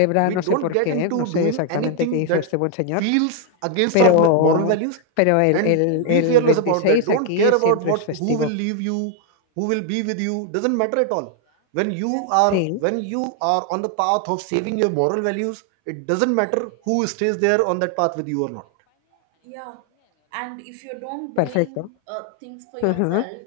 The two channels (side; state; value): both; different; correlation 0.00